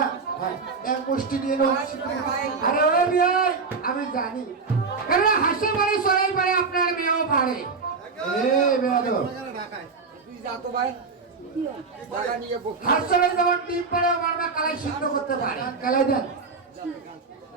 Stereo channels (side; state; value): left; quieter; 4.6 dB